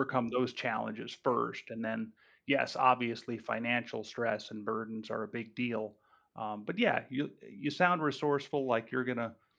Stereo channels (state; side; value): identical; both; correlation 1.00